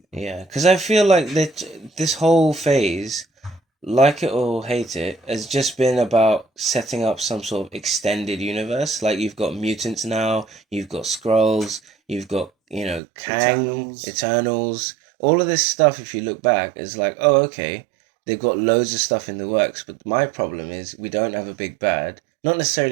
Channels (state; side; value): drops out; left; at 13.0 s